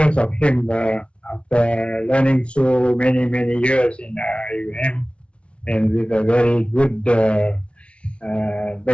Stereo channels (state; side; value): late; right; 0.060 ms